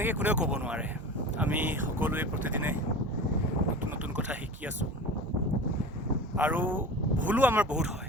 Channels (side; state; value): both; normal; correlation 0.34